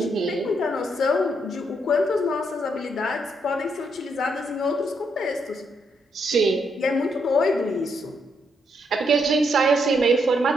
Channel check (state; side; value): normal; both; correlation 0.76